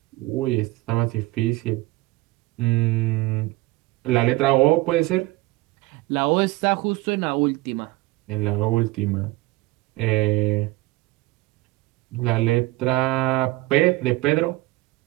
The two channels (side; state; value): left; quieter; 20.3 dB